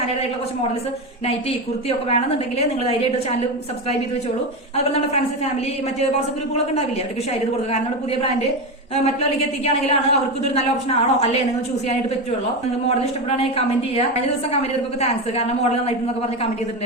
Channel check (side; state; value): both; normal; correlation 0.16